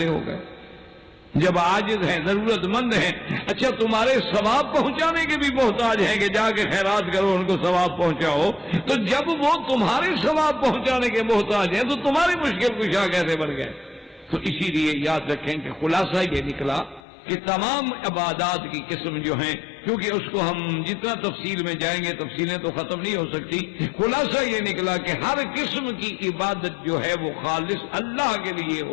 ہو گئے؟ جب عاجز ہیں، ضرورت مند ہیں، اچھا تمہارے ثواب پہنچانے کے بھی محتاج ہیں کہ جا کے خیرات کرو ان کو ثواب پہنچاؤ، تو جب وہ تمہارے ثواب پہنچانے کے محتاج ہیں تو تمہاری مشکل کشا کیسے بڑھ گئے؟ تو اسی لیے یاد رکھیں کہ خلاصہ یہ نکلا کہ تمام عبادات کی قسم جو ہیں، کیونکہ اس کو ہم جتنا تفصیل میں جائیں گے تفصیلیں تو ختم نہیں ہو سکتی، خلاصہ یہ نکلا کہ ہر قسم کی عبادت جو ہے وہ خالص اللہ کے لیے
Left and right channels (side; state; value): right; drops out; at 17.0 s